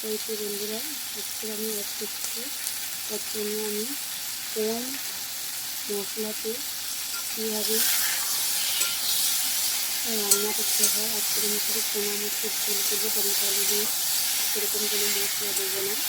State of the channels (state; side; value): identical; both; correlation 1.00